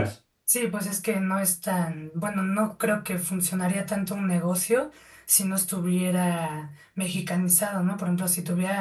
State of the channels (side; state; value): both; identical; correlation 1.00